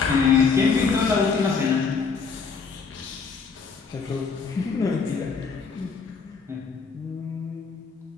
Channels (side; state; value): right; quieter; 5.3 dB